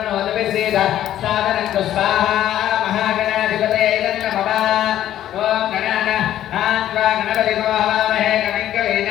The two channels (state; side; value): quieter; right; 12.1 dB